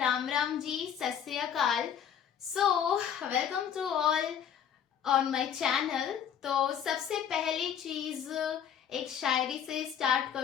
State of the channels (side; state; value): right; quieter; 8.7 dB